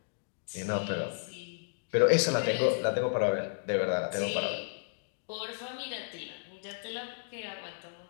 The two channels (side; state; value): right; silent; digital silence